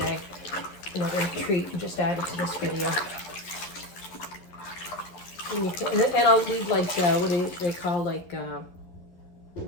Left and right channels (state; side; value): late; right; 11 ms